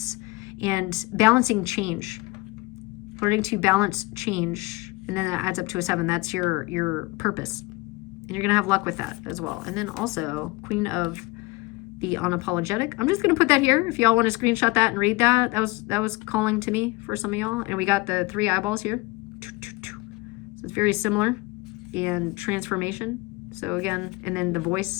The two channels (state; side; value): quieter; right; 23.1 dB